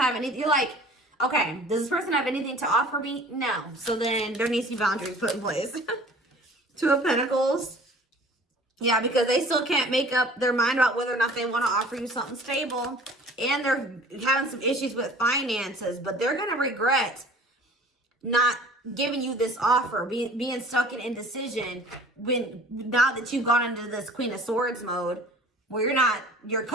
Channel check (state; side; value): normal; both; correlation 0.47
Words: anything. You're like, okay, does this person have anything to offer me? No. So then there needs to be boundaries put in place. Two of Pentacles. Yeah, because they still can't make up their mind about whether or not they want to offer you something stable. And they're having some issues with finances. But they're going to regret not giving you this offer, being stuck in indecision now that you've gone into this Queen of Swords mode, where you're